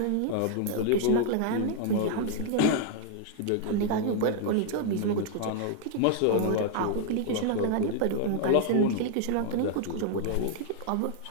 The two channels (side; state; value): both; different; correlation 0.00